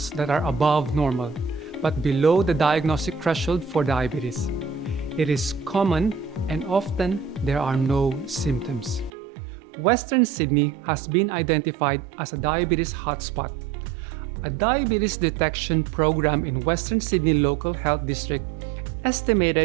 that are above normal, but below the diagnostic threshold for diabetes. It is common and often there are no symptoms. Western Sydney has been identified as a diabetes hotspot. A diabetes detection program in Western Sydney Local Health District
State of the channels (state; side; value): drops out; left; at 9.1 s